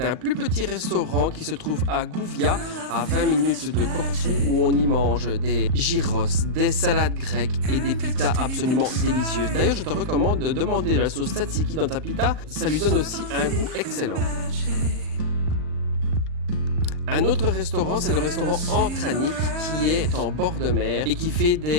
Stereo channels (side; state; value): left; late; 39 ms